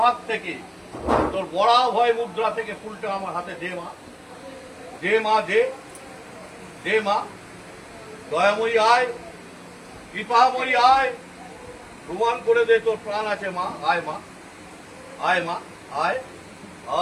হাত থেকে, তোর বড়া ভয় মুদ্রা থেকে ফুলটা আমার হাতে দে মা, দে মা, দে দে মা। দয়াময়ী আয়, কৃপাময়ী আয়, প্রমাণ করে দে তোর প্রাণ আছে মা। আয় মা, আয় মা, আয়।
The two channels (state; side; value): identical; both; correlation 1.00